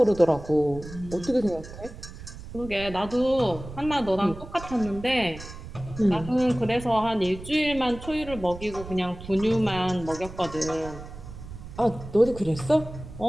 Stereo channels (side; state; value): right; noise; rumble, 13 dB below the sound